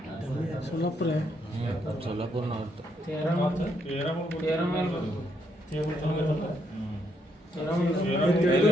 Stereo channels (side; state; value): both; normal; correlation 0.75